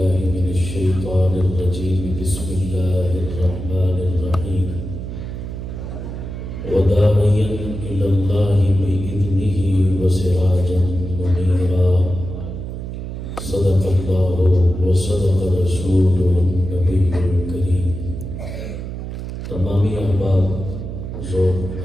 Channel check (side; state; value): right; noise; hum, 7 dB below the sound